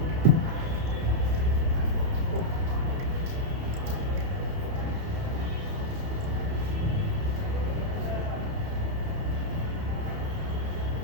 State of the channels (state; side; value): late; left; 30 ms